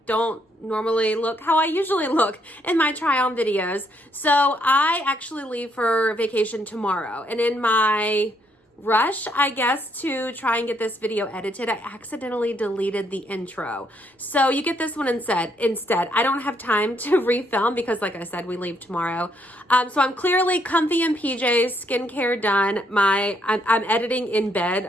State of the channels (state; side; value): normal; both; correlation 0.73